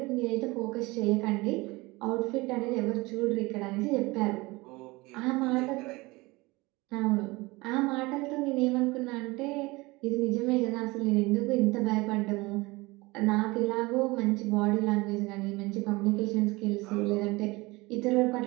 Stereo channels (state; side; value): quieter; left; 22.8 dB